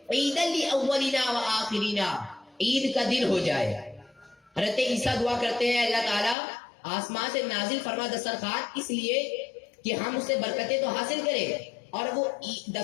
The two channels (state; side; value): drops out; right; at 6.4 s